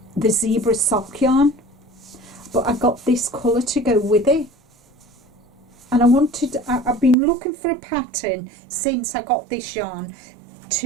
the zebra sock yarn, but I got this colour to go with it, and I've been looking for a pattern since I got this yarn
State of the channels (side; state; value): left; drops out; at 7.2 s